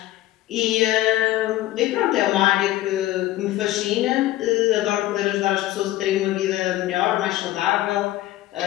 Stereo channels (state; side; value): quieter; right; 15.5 dB